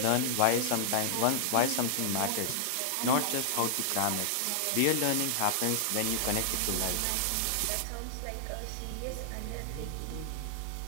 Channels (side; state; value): both; different; correlation -0.01